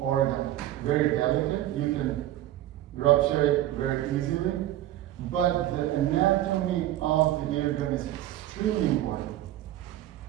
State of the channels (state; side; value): quieter; left; 14.0 dB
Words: very delicate. You can rupture it very easily, but the anatomy of the eardrum is extremely important.